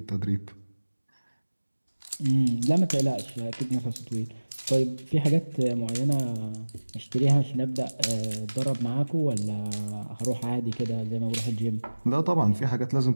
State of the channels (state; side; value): inverted; both; correlation -1.00